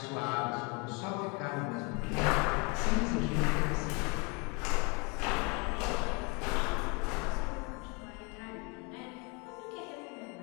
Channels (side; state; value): right; quieter; 31.3 dB